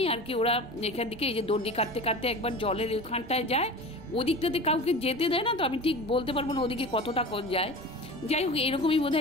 আর কি ওরা এখান থেকে এই যে দণ্ডি কাটতে কাটতে একবার জলের ওখানটায় যায়। ওদিকটাতে কাউকে যেতে দেয় না, তো আমি ঠিক বলতে পারবো না ওদিকে কতটা যায়। যাই হোক, এরকমই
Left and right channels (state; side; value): noise; right; rumble, 20 dB below the sound